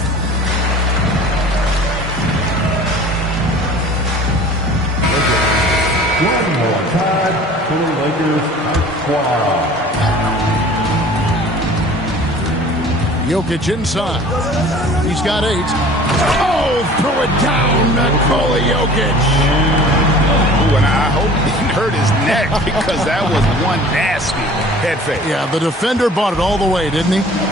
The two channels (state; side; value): normal; both; correlation 0.46